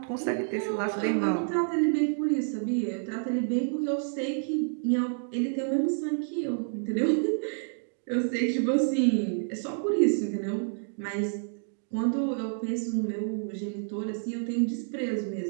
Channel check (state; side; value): silent; left; digital silence